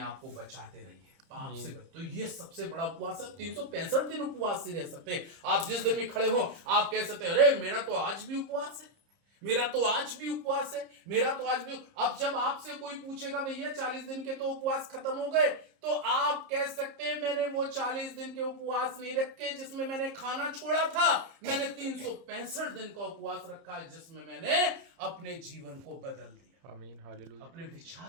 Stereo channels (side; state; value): left; late; 30 ms